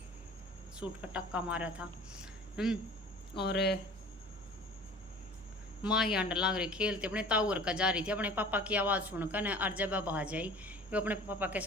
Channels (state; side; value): normal; both; correlation 0.44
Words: सूट का टक्का मारा था। और माँ ही अंडर लाग रही खेलते, अपने ताऊर का जा रही थी, अपने पापा की आवाज़ सुनकर न, और जब अब आ जाई वो अपने पापा के